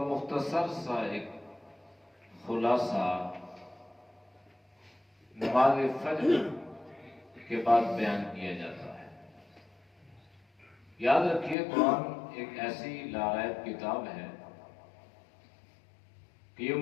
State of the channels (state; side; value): drops out; right; at 11.6 s